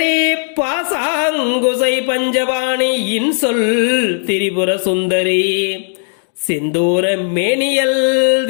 பாசாங்குசை பஞ்சவாணி இன்சொல் திரிபுர சுந்தரி சிந்தூர மேனியல்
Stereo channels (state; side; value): silent; right; digital silence